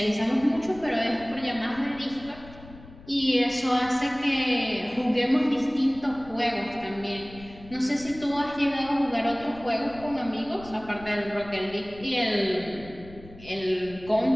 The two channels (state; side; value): noise; left; rumble, 19 dB below the sound